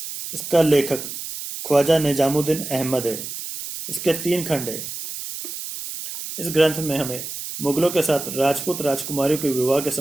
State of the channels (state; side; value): noise; right; hiss, 8 dB below the sound